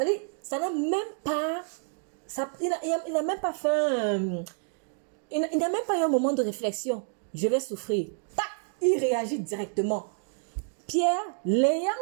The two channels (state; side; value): silent; left; 59 dB below the other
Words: ça n'a même pas... il n'a même pas fait... il n'a même pas eu un moment de réflexion. Je vais souffrir. Tac, il réagit directement. Pierre, l'ayant